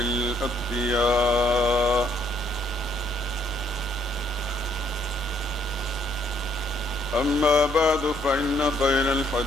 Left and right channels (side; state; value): both; normal; correlation 0.69